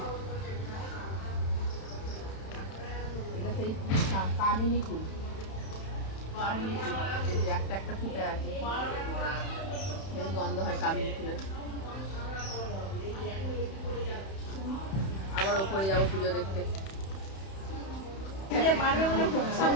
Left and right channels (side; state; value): right; late; 31 ms